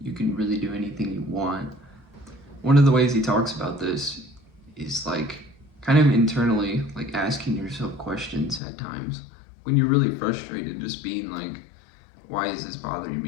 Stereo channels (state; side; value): drops out; right; at 8.6 s